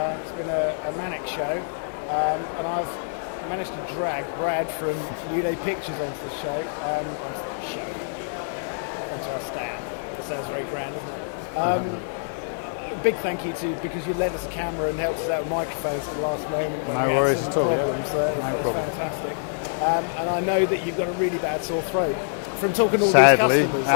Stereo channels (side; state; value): right; silent; digital silence